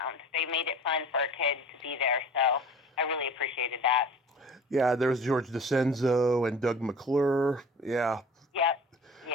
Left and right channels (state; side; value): normal; both; correlation 0.42